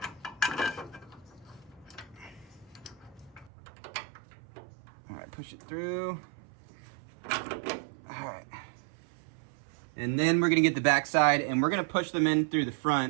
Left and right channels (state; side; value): drops out; left; at 3.5 s